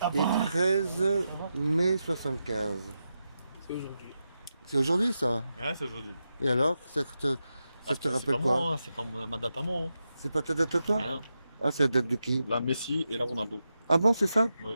13 mai 75. C'est aujourd'hui. C'est aujourd'hui ça? Ouais, c'est aujourd'hui. Et alors, ça te rappelle quoi? C'est pas ma date à moi. C'est pas ta date à toi? Hein. Ah, c'est la date de qui? La Messi et la Ronaldo. Ah bon, c'est ça?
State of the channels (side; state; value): both; inverted; correlation -0.88